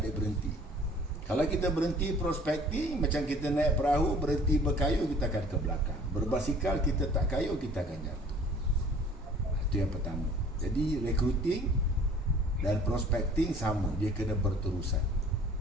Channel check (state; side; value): normal; both; correlation 0.51